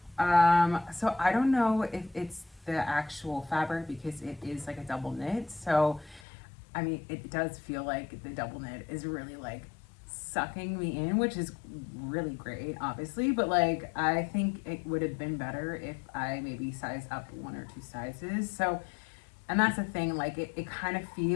So I don't know if it's the actual fabric because it is like a double knit. So I mean, it does feel like the double knit is really like sucking me in, which is really great, obviously. But like, I think it would have been better if I maybe size up 1 or 2 sizes. So, and that's the thing, like, it kind of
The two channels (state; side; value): drops out; right; at 6.2 s